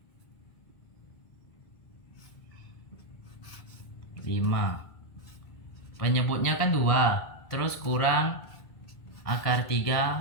5, penyebutnya kan 2, terus kurang akar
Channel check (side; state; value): right; late; 1.9 ms